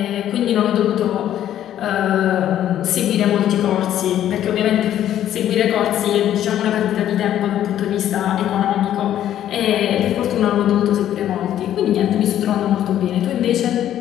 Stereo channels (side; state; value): right; quieter; 11.4 dB